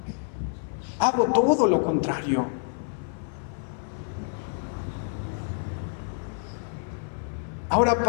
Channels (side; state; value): right; silent; 60 dB below the other